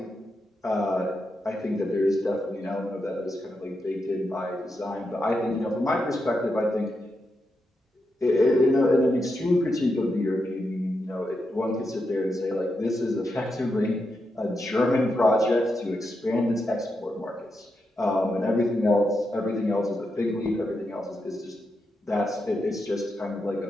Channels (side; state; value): both; normal; correlation 0.85